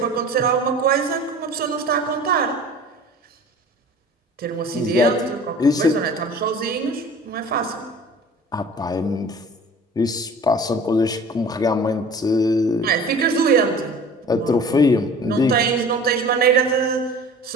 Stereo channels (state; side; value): normal; both; correlation 0.43